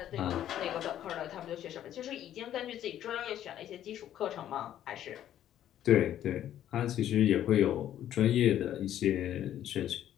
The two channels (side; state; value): right; quieter; 11.4 dB